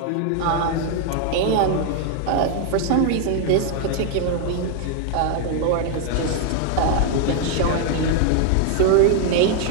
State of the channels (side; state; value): both; different; correlation 0.00